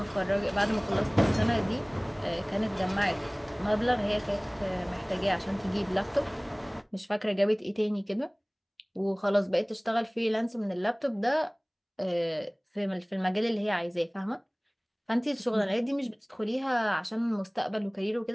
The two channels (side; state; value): both; identical; correlation 1.00